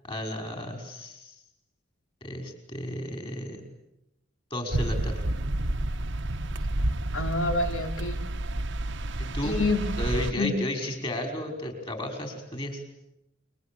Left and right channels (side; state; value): both; normal; correlation 0.61